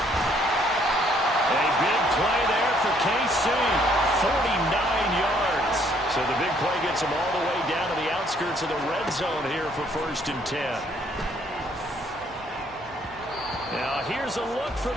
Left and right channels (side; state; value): both; normal; correlation 0.65